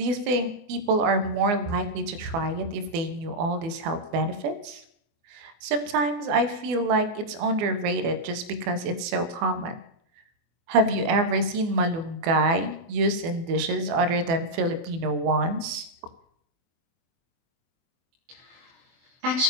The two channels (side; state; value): left; late; 24 ms